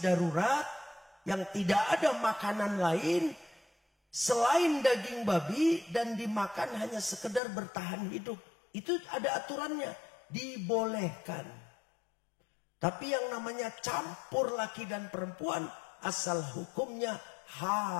darurat yang tidak ada makanan lain selain daging babi dan dimakan hanya sekedar bertahan hidup. Itu ada aturannya. Dibolehkan. Tapi yang namanya campur laki dan perempuan asal hukumnya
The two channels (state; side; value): drops out; right; at 7.4 s